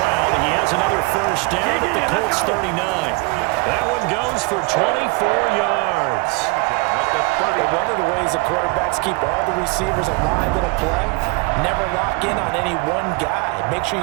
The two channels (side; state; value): left; quieter; 27.8 dB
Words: He has another first down at the Colts 39. That one goes goes for 24 yards. But one of the ways the quarterbacks keep all the receivers alive in a play, never lock in on any one guy. Make sure